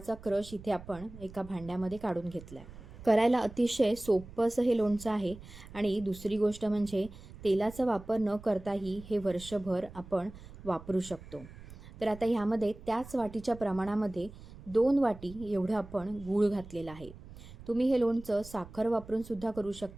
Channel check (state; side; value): noise; right; rumble, 17 dB below the sound